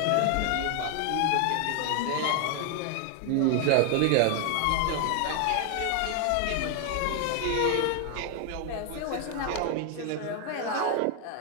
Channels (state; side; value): different; both; correlation 0.00